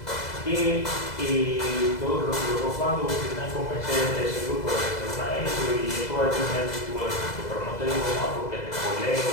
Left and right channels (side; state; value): right; late; 2.0 ms